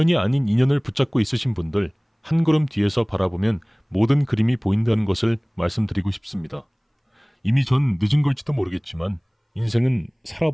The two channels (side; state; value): both; identical; correlation 1.00